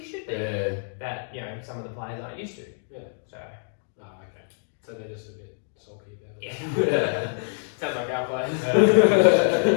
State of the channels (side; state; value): right; silent; digital silence